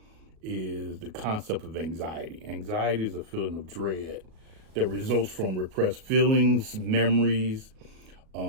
is the concept of anxiety. Anxiety is a feeling of dread that results from repressed feelings, memories,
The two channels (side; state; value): left; late; 37 ms